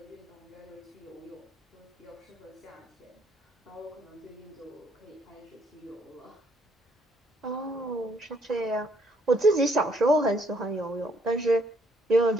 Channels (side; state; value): both; normal; correlation 0.68